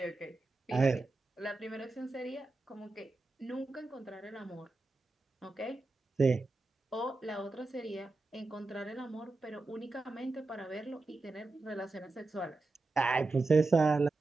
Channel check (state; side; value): quieter; left; 3.3 dB